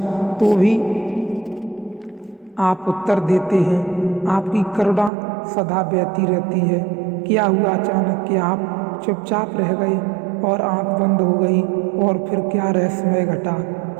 तो भी आप उत्तर देते हैं। आपकी करुणा सदा बहती रहती है। क्या हुआ अचानक कि आप चुपचाप रह गए और आंख बंद हो गई? और फिर क्या रहस्यमय घटा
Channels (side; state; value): left; drops out; at 5.1 s